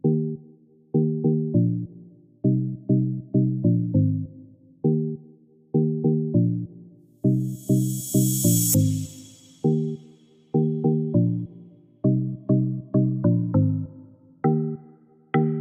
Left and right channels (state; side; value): identical; both; correlation 1.00